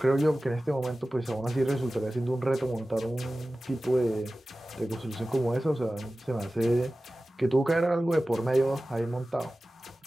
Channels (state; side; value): normal; both; correlation 0.96